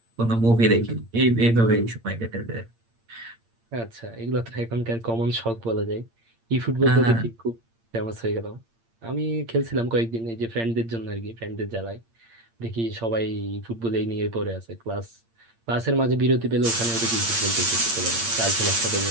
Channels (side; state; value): left; late; 8.7 ms